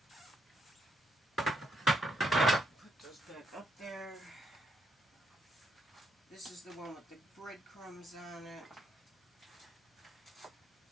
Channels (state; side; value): normal; both; correlation 0.77